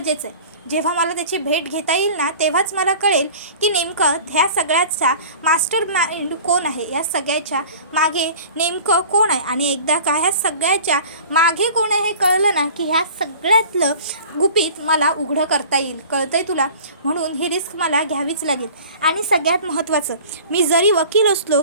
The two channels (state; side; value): inverted; both; correlation -0.44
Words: आहे. जेव्हा मला त्याची भेट घेता येईल ना, तेव्हाच मला कळेल की नेमकं ह्या सगळ्याचा मास्टर माइंड कोण आहे, या सगळ्याच्या मागे नेमकं कोण आहे. आणि एकदा का ह्या सगळ्याच्या मागे कोण आहे हे कळलं ना, की ह्या सगळ्यातलं गुपित मला उघडं करता येईल, कळतंय तुला? म्हणून ही रिस्क मला घ्यावीच लागेल. आणि सगळ्यात महत्त्वाचं, मी जरी वकील असलो